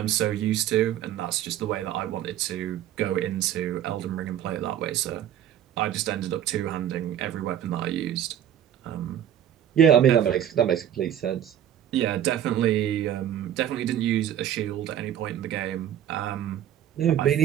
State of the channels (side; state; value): left; quieter; 10.6 dB